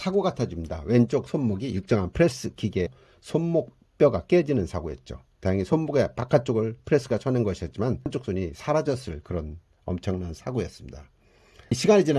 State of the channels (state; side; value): identical; both; correlation 1.00